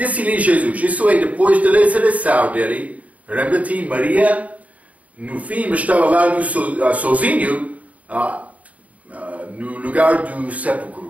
Jesus, isso é depois da ressurreição dele. Lembra-te, Maria, no fim, estava lá sozinho, no lugar do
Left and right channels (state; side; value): late; left; 0.070 ms